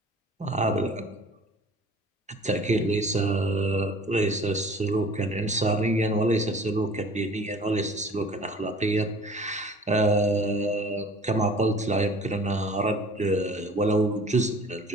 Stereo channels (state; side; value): normal; both; correlation 0.47